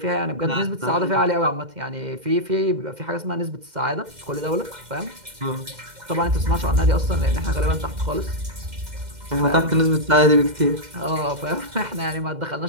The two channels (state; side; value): late; left; 2.1 ms